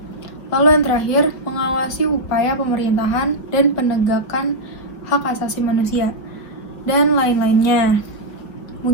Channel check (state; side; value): late; right; 4.9 ms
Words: Lalu yang terakhir, mengawasi upaya pemerintahan dan penegakan hak asasi manusia, dan lain-lainnya.